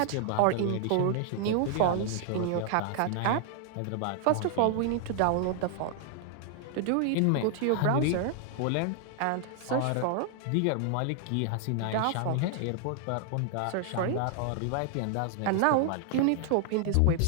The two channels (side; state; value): both; different; correlation 0.00